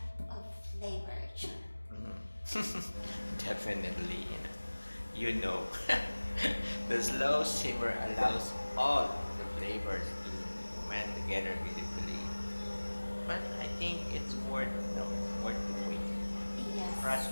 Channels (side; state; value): both; inverted; correlation -1.00